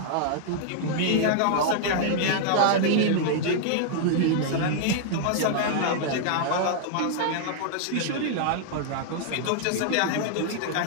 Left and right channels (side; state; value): both; different; correlation -0.01